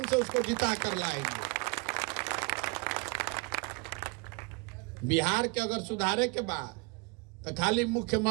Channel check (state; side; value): quieter; left; 30.4 dB